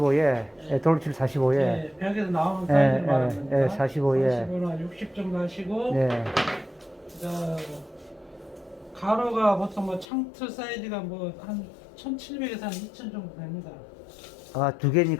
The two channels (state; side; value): drops out; right; at 10.1 s